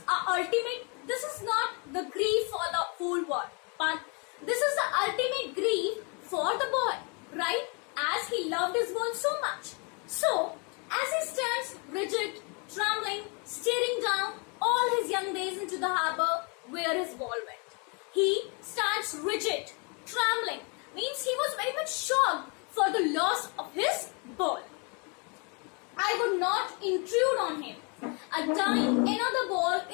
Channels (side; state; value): right; quieter; 34.1 dB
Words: not the grief for the whole world, but this is the ultimate grief for the boy, right? As he loved his ball so much. So as he stands rigid, trembling, staring down all his young days into the harbor where his ball went. He stands rigid, trembling, means he was very much shocked for the loss of his ball. I would not intrude on him. A dime another ball